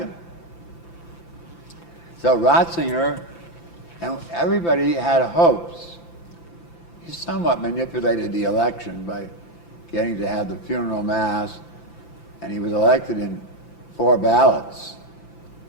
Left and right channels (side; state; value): right; late; 5.9 ms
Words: So Ratzinger, and everybody had hopes. He somewhat manipulated the election by getting to have the funeral mass, and he was elected in 4 ballots,